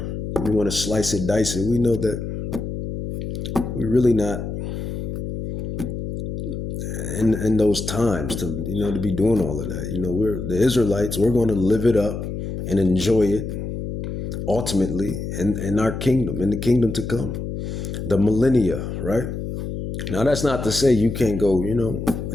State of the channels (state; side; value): noise; left; hum, 5 dB below the sound